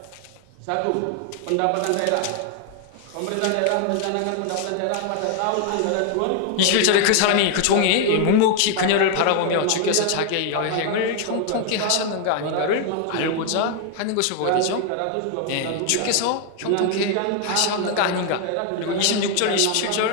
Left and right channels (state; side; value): different; both; correlation 0.00